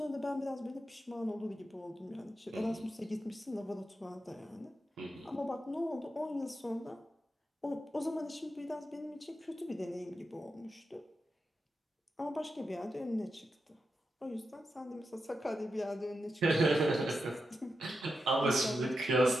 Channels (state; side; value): normal; both; correlation 0.88